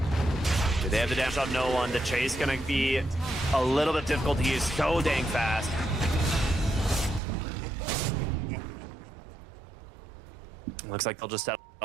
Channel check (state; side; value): drops out; left; at 7.2 s